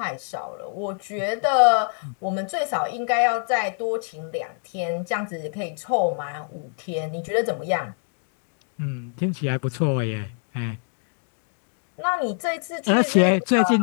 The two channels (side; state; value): right; silent; 55 dB below the other